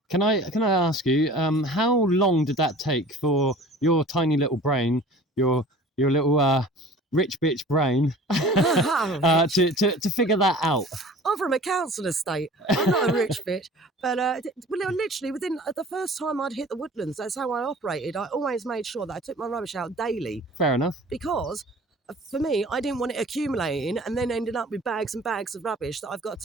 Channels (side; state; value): both; normal; correlation 0.44